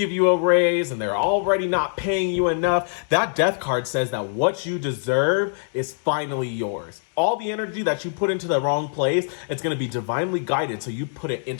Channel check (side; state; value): right; silent; digital silence